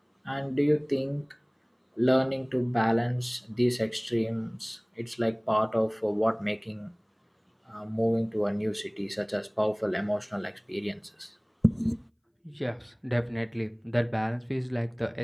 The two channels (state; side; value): identical; both; correlation 1.00